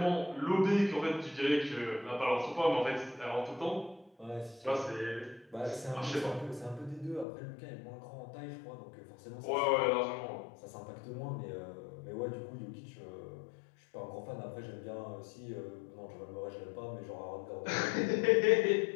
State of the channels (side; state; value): right; drops out; at 7.2 s